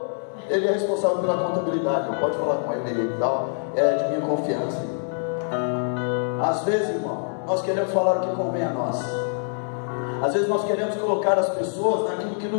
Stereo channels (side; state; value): right; silent; digital silence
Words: Ele é responsável pela contabilidade. Eu pode falar com ele e tal. É de minha confiança. Às vezes, irmão, nós queremos falar o que convém a nós. Às vezes nós queremos colocar as pessoas naquilo que